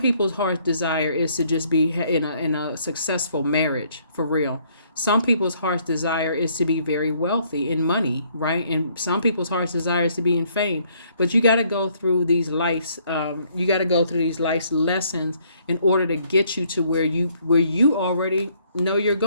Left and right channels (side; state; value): both; inverted; correlation -0.66